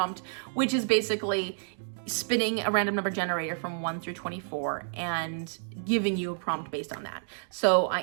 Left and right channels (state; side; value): silent; left; 58 dB below the other